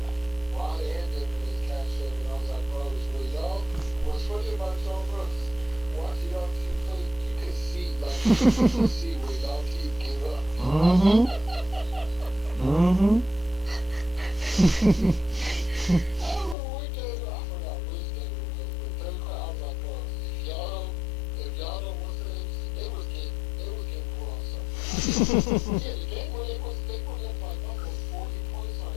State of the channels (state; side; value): drops out; right; at 16.6 s